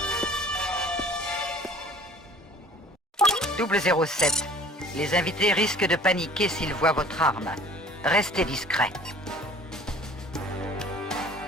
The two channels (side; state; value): both; normal; correlation 0.49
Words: Double 07. Les invités risquent de paniquer s'ils voient votre arme. Restez discret.